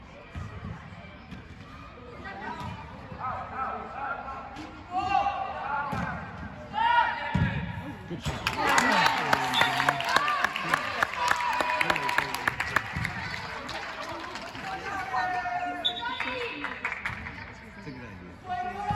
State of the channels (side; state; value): both; identical; correlation 1.00